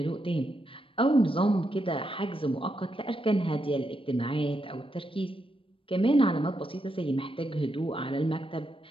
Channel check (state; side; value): late; right; 0.26 ms